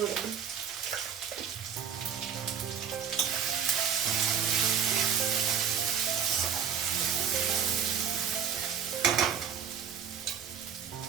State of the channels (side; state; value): left; quieter; 7.7 dB